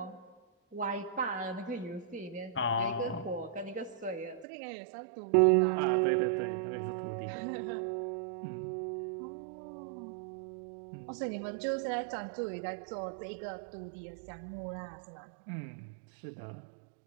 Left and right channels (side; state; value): left; drops out; at 4.5 s